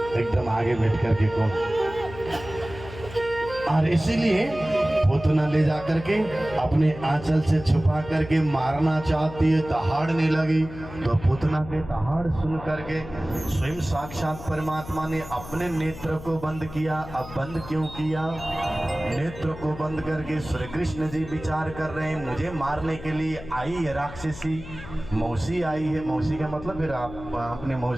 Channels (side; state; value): left; noise; hum, 13 dB below the sound